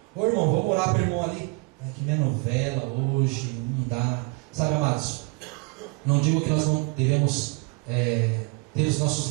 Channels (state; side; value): quieter; left; 27.3 dB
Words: Ô irmão, vamos orar para o irmão ali. Que minha novela hoje, não dá. Sabe, amados, não digo que nós não devemos ter os nossos